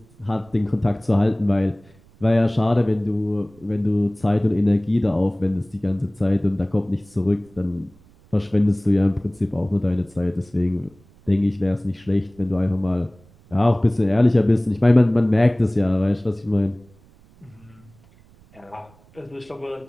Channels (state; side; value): noise; right; rumble, 28 dB below the sound